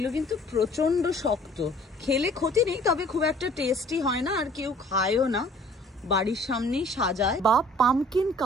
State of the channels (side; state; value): both; normal; correlation 0.54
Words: কিন্তু প্রচন্ড শক্ত, খেলে ক্ষতি নেই, তবে খুব একটা টেস্টি হয় না, আর কেউ খায়ও না। বাড়ির সামনেই সাজায় বা পামকিন